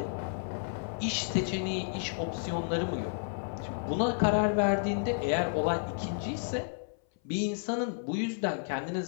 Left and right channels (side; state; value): right; silent; 57 dB below the other